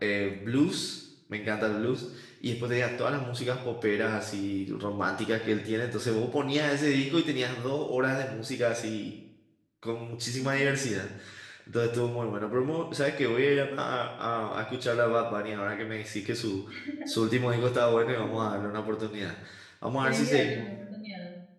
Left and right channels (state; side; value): identical; both; correlation 1.00